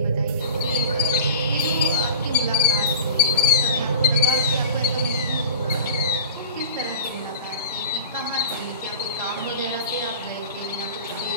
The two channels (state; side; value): inverted; both; correlation -0.34